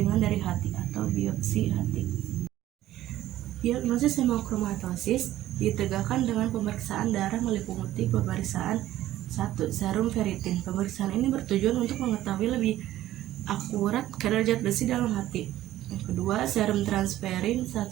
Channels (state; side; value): quieter; left; 14.1 dB